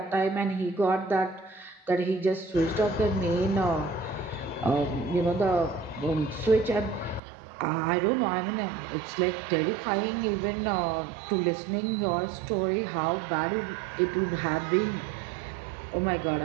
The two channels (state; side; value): drops out; left; at 7.2 s